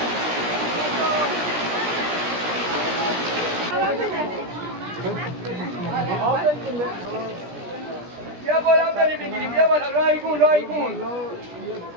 بیا بالا بریم بگیریم بیا بالا رایگون رایگون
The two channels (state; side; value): late; left; 17 ms